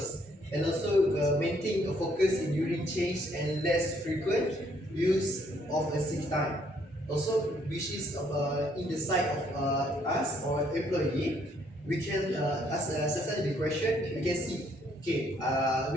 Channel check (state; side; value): normal; both; correlation 0.67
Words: and also maintain a focus in during change and less frequent use of a sick time. Also, which is in the side of us or employee, we can ask the question. We can see, okay,